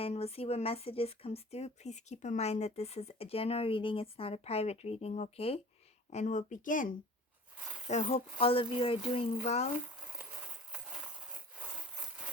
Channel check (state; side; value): normal; both; correlation 0.45